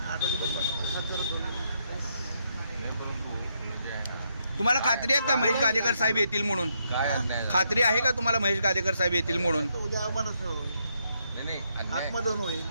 8 वाजेपर्यंत बसणार. तुम्हाला खात्री आहे का महेश गाडेकर साहेब येतील म्हणून? खात्री आहे का तुम्हाला महेश गाडेकर साहेब येतील म्हणून? उद्या मनच होईल, आत्मदहन होईल.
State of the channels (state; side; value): inverted; both; correlation -0.77